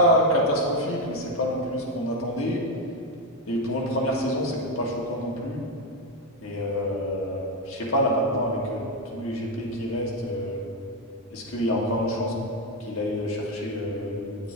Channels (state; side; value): normal; both; correlation 0.08